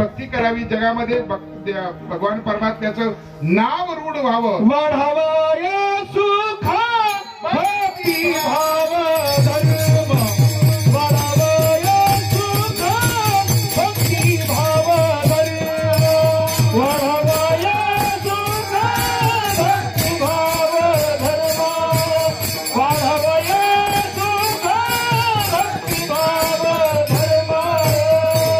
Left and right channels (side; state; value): both; identical; correlation 1.00